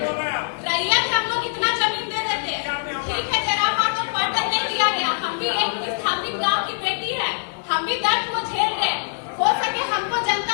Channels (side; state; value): right; silent; digital silence